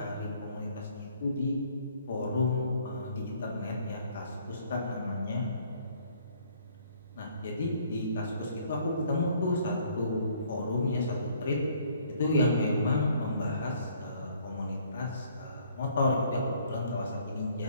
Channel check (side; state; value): both; inverted; correlation -0.61